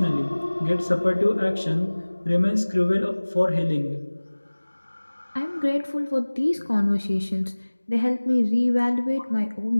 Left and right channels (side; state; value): both; inverted; correlation -1.00